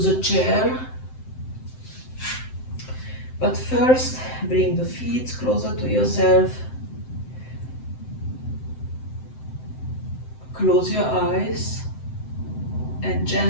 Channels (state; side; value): late; right; 7.8 ms